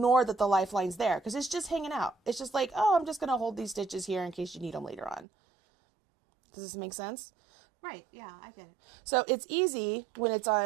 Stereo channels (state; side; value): drops out; left; at 5.2 s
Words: that the lifeline's there because it's just hanging out. It's just like, oh, I'm just going to hold these stitches here in case you need them later on. Does this make sense? Right. Yeah, I get it. So it's easy when it's